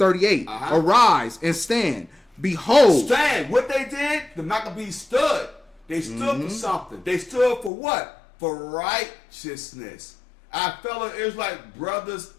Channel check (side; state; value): right; drops out; at 7.7 s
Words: Arise and stand. Behold. Stand. What they did, the Maccabees stood. They stood for something. They stood for what? For righteousness. Our fellow Israelite brothers